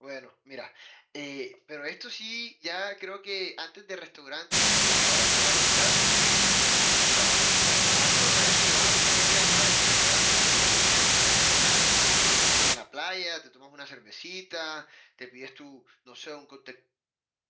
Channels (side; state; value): both; identical; correlation 1.00